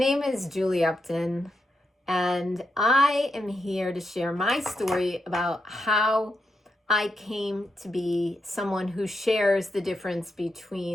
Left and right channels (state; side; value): normal; both; correlation 0.84